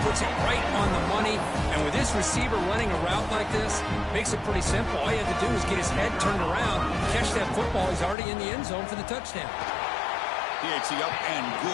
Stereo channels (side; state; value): right; drops out; at 8.2 s